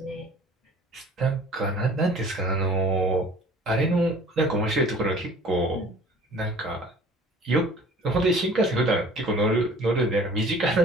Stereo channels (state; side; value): normal; both; correlation 0.48